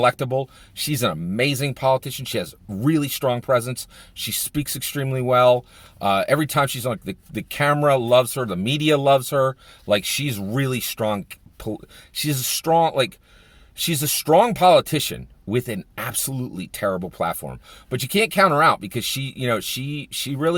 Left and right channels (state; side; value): identical; both; correlation 1.00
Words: She's an amazing politician. She has really strong presence. She speaks extremely well. Every time she's on, the camera loves her. The media loves her. Like she's really strong. She's a strong politician with an absolutely terrible platform. But you can't count her out because she